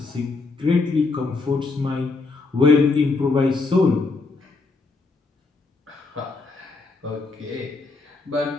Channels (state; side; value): quieter; right; 3.9 dB